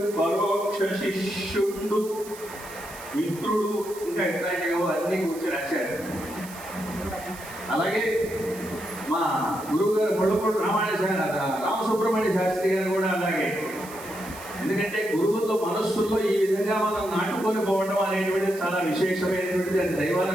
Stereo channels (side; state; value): right; noise; hiss, 16 dB below the sound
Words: పరోక్ష శిష్యుడు, మిత్రుడు, ఇంకా ఇట్లాంటివో అన్ని కూర్చొని రాశారు. అలాగే మా గురువు గారు మొడపూడి రామసుబ్రహ్మణ్య శాస్త్రి గారు కూడా అలాగే. ఎందుకంటే గురువుల్లో మనస్సుల్లో ఈ విధంగా మనం నాటుకొని పోవడం అనేటువంటిది చాలా విశేషమైనటువంటిది. అది